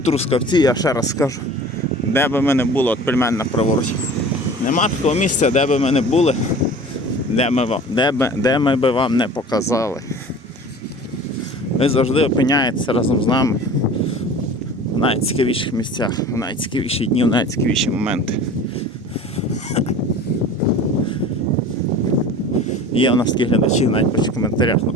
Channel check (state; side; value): normal; both; correlation 0.41